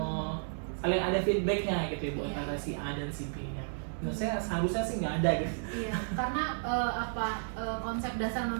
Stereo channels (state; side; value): silent; left; digital silence